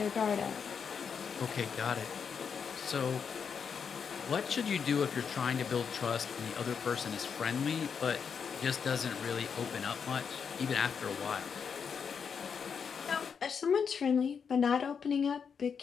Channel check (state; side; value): quieter; right; 6.5 dB